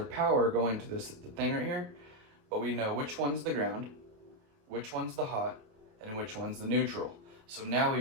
power going to this thing right here, but we know which one's the ground, which one's the hot, and which one's the neutral. So now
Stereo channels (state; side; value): late; left; 28 ms